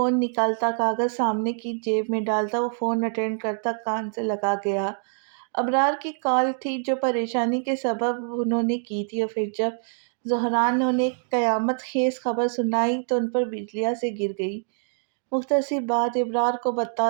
نکالتا، کاغذ سامنے کی جیب میں ڈالتا، وہ فون اٹینڈ کرتا، کان سے لگا گیا۔ ابرار کی کال تھی جو پریشانی کے سبب انہوں نے کی تھی، اور پھر جب زہران نے انہیں ایک قیامت خیز خبر سنائی تو ان پر بجلیاں سے گر گئی۔ مختصر بات ابرار کو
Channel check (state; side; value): silent; left; digital silence